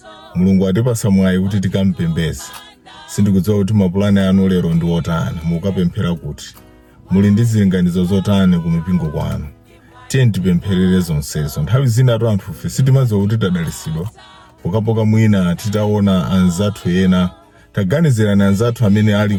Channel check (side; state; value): both; identical; correlation 1.00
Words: Mulungu atipasa mwayi kuti tikampembeze. Sindikudziwa kuti mapulani anu lero ndi otani, mukapemphera kuti muli ndi zilinganizo zotani ku mipingo kwanu. Tiye tipempherere zonsezo. Nthawi zina anthu ife sitimadziwa kuti tadalisidwa pokapoka mwina titaona anzathu ena, taganizirani anzathu amene ali